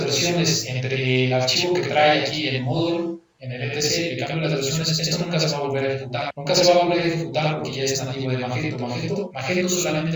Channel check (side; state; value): both; identical; correlation 1.00